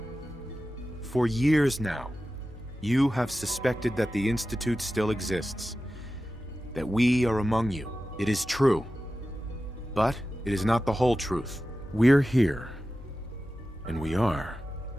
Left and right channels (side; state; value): both; normal; correlation 0.94